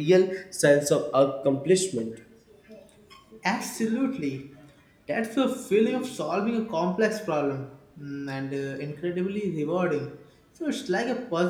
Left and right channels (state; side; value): identical; both; correlation 1.00